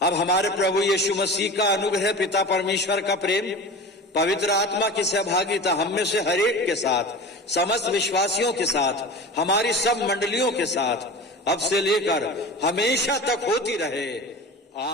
अब हमारे प्रभु यीशु मसीह का अनुग्रह, पिता परमेश्वर का प्रेम, पवित्र आत्मा की सहभागिता हम में से हर एक के साथ, समस्त विश्वासियों के साथ, हमारी सब मंडलियों के साथ अब से लेकर हमेशा तक होती रहे,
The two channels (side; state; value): both; normal; correlation 0.34